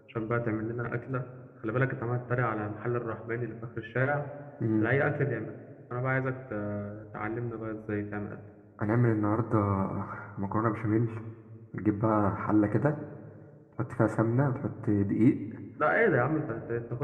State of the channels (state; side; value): identical; both; correlation 1.00